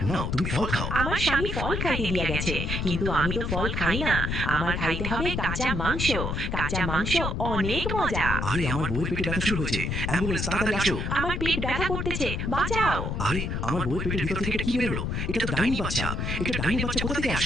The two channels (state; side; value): noise; left; rumble, 2 dB below the sound